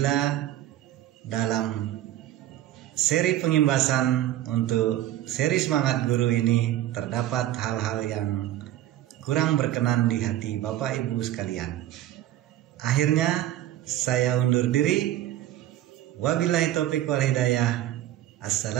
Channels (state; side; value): quieter; left; 13.5 dB